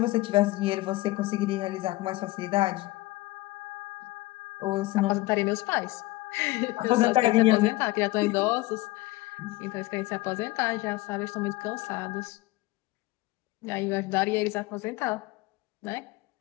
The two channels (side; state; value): right; quieter; 19.7 dB